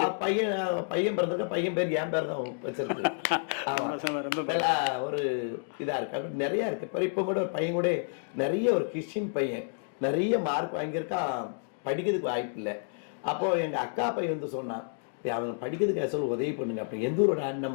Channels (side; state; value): right; silent; digital silence